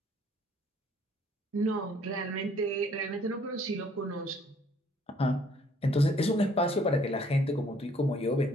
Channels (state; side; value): normal; both; correlation 0.61